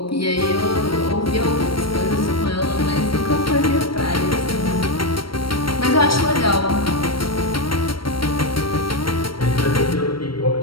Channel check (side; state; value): right; late; 0.74 ms